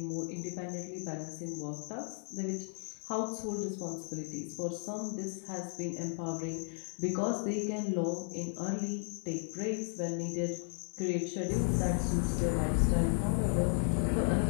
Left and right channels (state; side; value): silent; right; 55 dB below the other